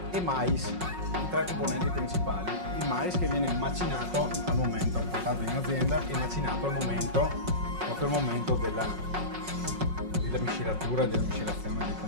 e mais, i tre componenti principali. Il mais che viene macinato al momento, portato in azienda e macinato al momento, proprio al momento della miscelatura e della miscelazione dei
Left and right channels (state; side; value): late; left; 5.5 ms